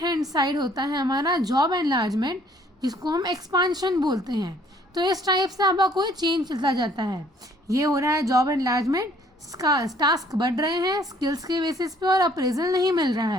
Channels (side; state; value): both; normal; correlation 0.60